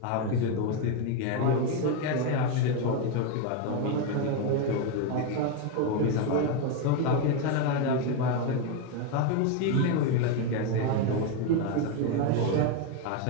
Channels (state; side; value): different; both; correlation 0.02